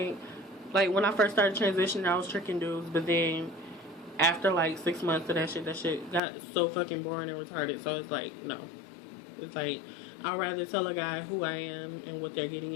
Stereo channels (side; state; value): right; drops out; at 6.2 s